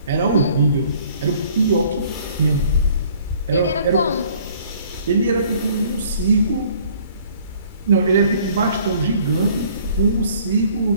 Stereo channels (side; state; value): both; inverted; correlation -0.57